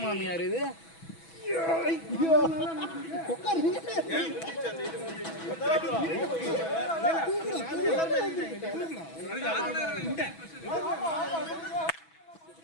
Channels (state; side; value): late; right; 6.1 ms